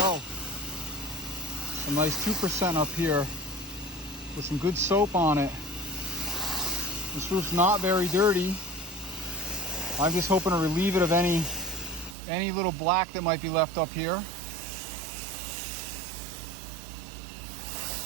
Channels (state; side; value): drops out; left; at 12.2 s